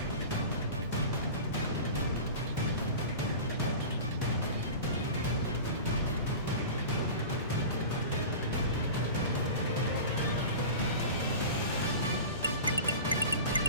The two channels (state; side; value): inverted; both; correlation -0.34